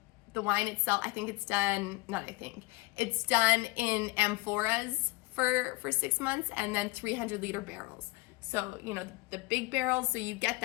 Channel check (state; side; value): quieter; right; 23.4 dB